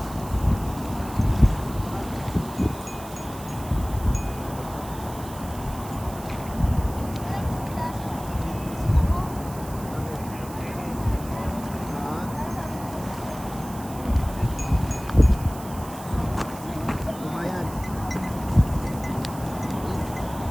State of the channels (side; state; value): right; noise; hiss, 16 dB below the sound